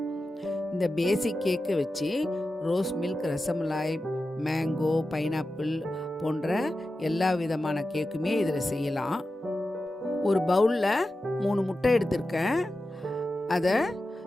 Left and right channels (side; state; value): both; normal; correlation 0.92